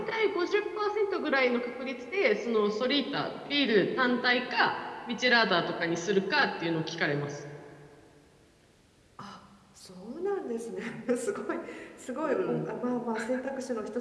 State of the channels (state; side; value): identical; both; correlation 1.00